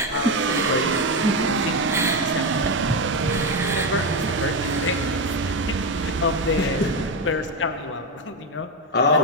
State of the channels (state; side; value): normal; both; correlation 0.10